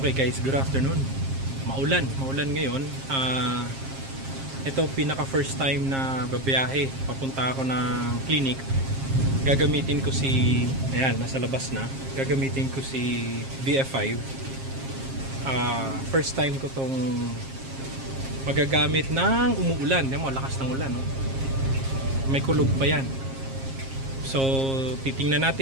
guys, good afternoon. Maulan ngayon. Ito pinaka first time na babiyahe. Papunta ako ng clinic. Gagamitin ko si, ayan, nasa labas na. Gagamitin ko si VF5. First time ko tong magagamit ng umuulan. Yan mo, lakas ng ulan, no? May kulog pa yan. So, titingnan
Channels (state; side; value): late; left; 7.5 ms